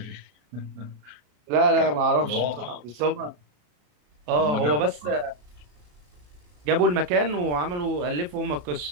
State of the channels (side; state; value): left; late; 34 ms